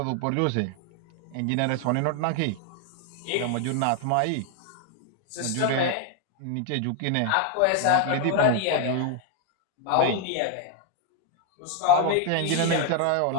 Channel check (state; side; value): different; both; correlation 0.00